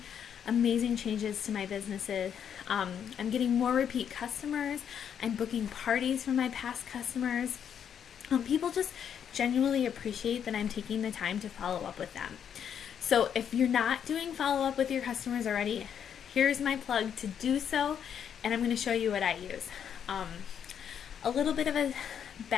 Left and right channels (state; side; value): quieter; right; 8.4 dB